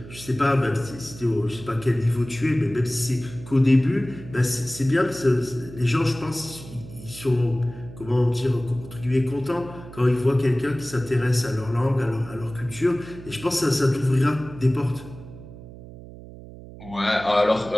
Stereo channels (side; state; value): right; noise; hum, 16 dB below the sound